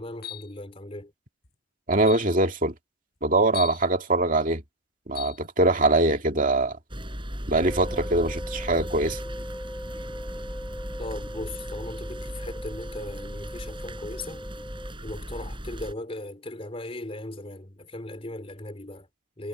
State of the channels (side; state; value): both; normal; correlation 0.06